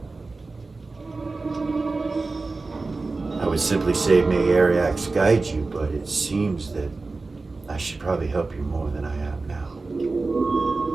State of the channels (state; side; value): quieter; left; 3.7 dB